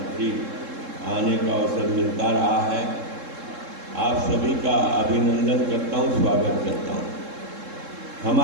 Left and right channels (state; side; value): late; left; 3.7 ms